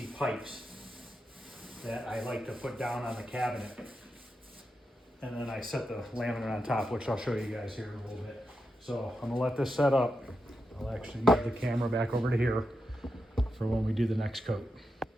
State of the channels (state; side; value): normal; both; correlation 0.87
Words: pipes that I like to put down on the cabinet. And then I set the laminate on top, which I'll show you guys here in a little bit. So I'm gonna let this set up. I'll actually move the camera back over to here for when we do the next coat.